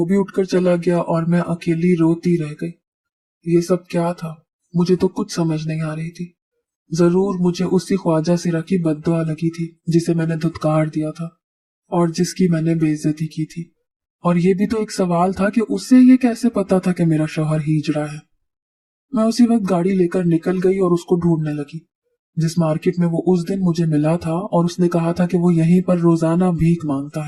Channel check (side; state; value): both; identical; correlation 1.00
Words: भी उठकर चला गया और मैं अकेली रोती रह गई। ये सब क्या था, मुझे तो कुछ समझ नहीं आ रही थी। जरूर मुझे उसी ख्वाजा सिरा की बद्दुआ लगी थी जिसे मैंने धुतकार दिया था और जिसकी मैंने बेइज्जती की थी। और ये भी तो एक सवाल था कि उसे ये कैसे पता था कि मेरा शौहर हिजड़ा है। मैं उसी वक्त गाड़ी लेकर निकल गई और उसको ढूंढने लगी, जिस मार्केट में वो उस दिन मुझे मिला था और उसने कहा था कि वो यहीं पर रोजाना भीख मांगता